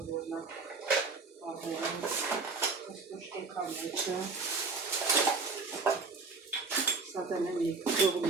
որնակ պահերին, կստուշկեկա մեջը, սա տնեմ եկ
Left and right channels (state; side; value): quieter; left; 4.2 dB